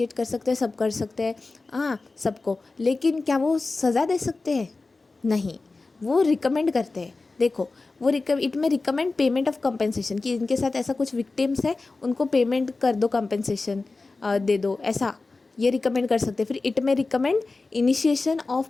कर सकते हैं, सब कर सकते हैं, हाँ सबको, लेकिन क्या वो सज़ा दे सकते हैं? नहीं, वो रिकमेंड करते हैं। देखो वो इट में रिकमेंड पेमेंट ऑफ कंपेंसेशन, कि इनके साथ ऐसा कुछ विक्टिम्स है उनको पेमेंट कर दो, कंपेंसेशन दे दो, ऐसा ये रिकमेंड कर सकते हैं। फिर इट में recommend initiation of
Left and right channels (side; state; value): right; quieter; 3.6 dB